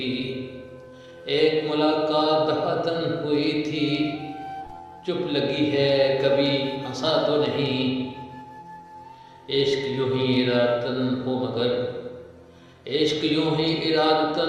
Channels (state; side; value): identical; both; correlation 1.00